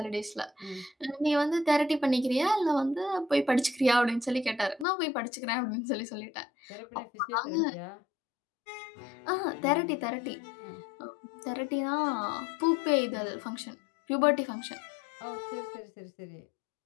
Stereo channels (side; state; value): right; drops out; at 4.9 s